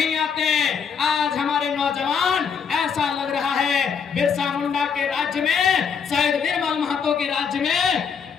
आते। आज हमारे नौजवान, ऐसा लग रहा है बिरसा मुंडा के राज्य में राज्य में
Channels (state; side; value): quieter; right; 6.5 dB